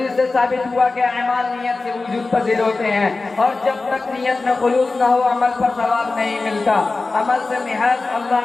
سے ثابت ہوا کہ اعمال نیت سے وجود پذیر ہوتے ہیں اور جب تک نیت میں خلوص نہ ہو عمل پر ثواب نہیں ملتا. عمل سے محض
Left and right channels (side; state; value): right; quieter; 3.6 dB